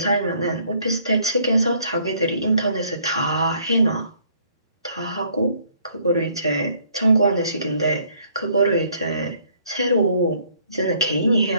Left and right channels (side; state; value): both; inverted; correlation -0.63